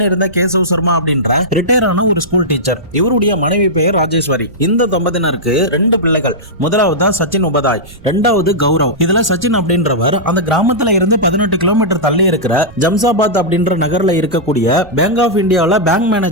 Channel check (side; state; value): right; noise; rumble, 22 dB below the sound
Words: கேசவ் சர்மா அப்படின்ற ரிட்டையர் ஆன ஒரு ஸ்கூல் டீச்சர். இவருடைய மனைவி பெயர் ராஜேஸ்வரி. இந்த தம்பதியினருக்கு 2 பிள்ளைகள். முதலாவது தான் சச்சின் உபாதாய், இரண்டாவது கௌரவ். இதுல சச்சின் அப்படின்றவர் அந்த கிராமத்துல இருந்து 18 கிலோமீட்டர் தள்ளி இருக்கிற ஜம்சாபாத் அப்படின்ற நகர்ல இருக்கக்கூடிய பேங்க் ஆஃப் இந்தியாவில் பேங்க்